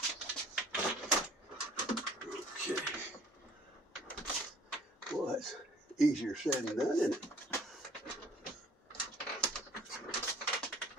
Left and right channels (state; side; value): normal; both; correlation 0.55